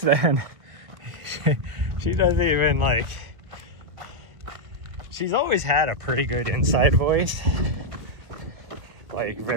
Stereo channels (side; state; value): left; late; 1.4 ms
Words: she doesn't even like, she's always had a pretty good inside voice, like